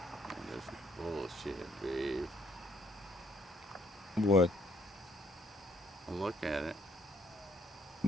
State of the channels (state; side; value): normal; both; correlation 0.67